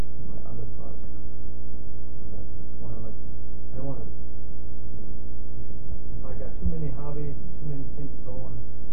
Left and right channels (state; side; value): noise; right; hum, 1 dB below the sound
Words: my other projects. So that's why I like to. I don't want to. If I got too many hobbies and too many things going,